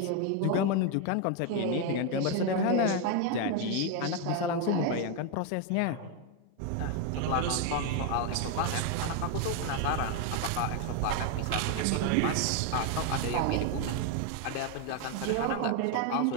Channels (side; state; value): both; different; correlation 0.01